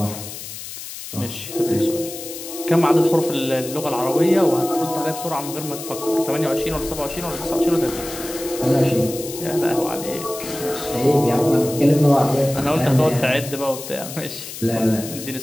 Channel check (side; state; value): left; noise; hiss, 11 dB below the sound